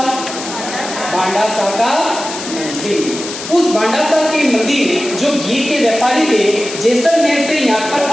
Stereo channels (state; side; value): noise; left; hiss, 9 dB below the sound